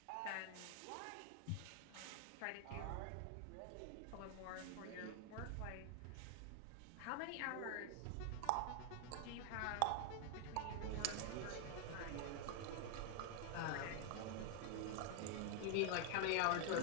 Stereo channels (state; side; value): different; both; correlation 0.00